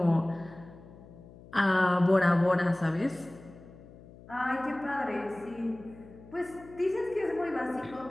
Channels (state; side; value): noise; left; hum, 20 dB below the sound